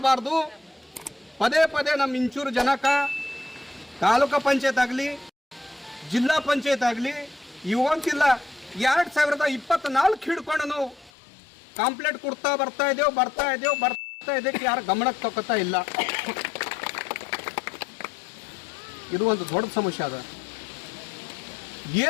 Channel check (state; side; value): drops out; right; at 11.1 s